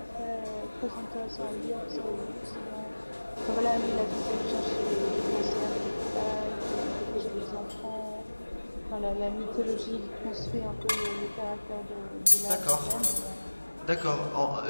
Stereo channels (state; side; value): inverted; both; correlation -1.00